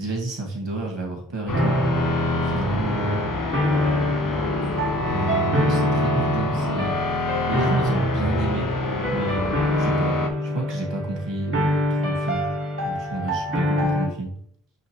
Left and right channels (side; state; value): both; normal; correlation 0.55